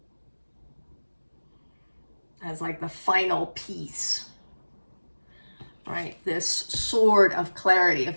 as like the final piece, right? This sword of clarity, of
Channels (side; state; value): both; inverted; correlation -1.00